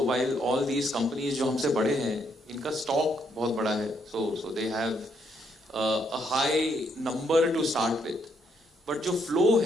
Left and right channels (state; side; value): normal; both; correlation 0.74